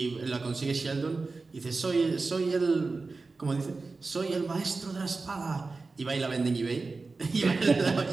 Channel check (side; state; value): left; quieter; 3.9 dB